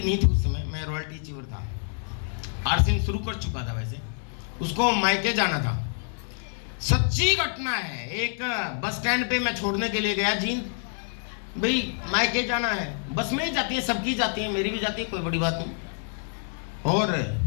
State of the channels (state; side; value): silent; right; 55 dB below the other